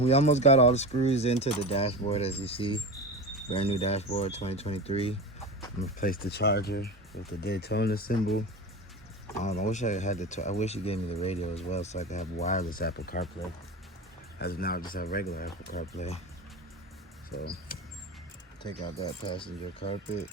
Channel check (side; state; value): both; normal; correlation 0.26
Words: almost got all the screws into the dashboard, as you see. Brand new dashboard, 2023. I'm gonna place the charger with the Daytona symbol. I wish I had I wish you gave me the radio as well, so I could have wireless Apple CarPlay. As of now, I just have regular Apple CarPlay. So take out that passenger carpet.